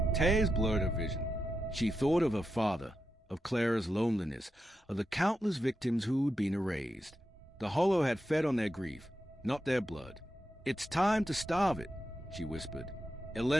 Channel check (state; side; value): normal; both; correlation 0.88